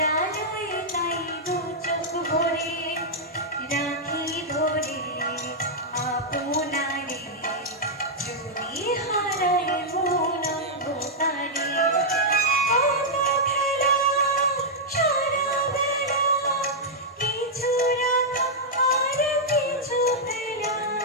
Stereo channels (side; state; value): both; normal; correlation -0.06